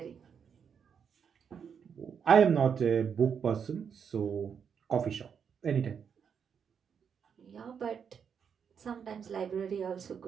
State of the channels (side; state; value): left; quieter; 7.1 dB